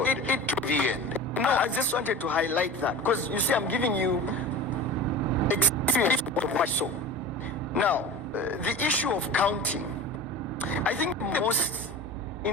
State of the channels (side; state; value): both; normal; correlation 0.33